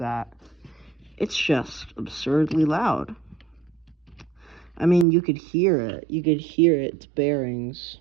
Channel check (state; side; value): drops out; left; at 5.1 s